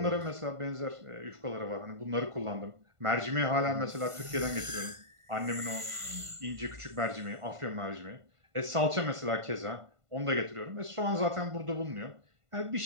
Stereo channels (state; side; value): late; left; 1.5 ms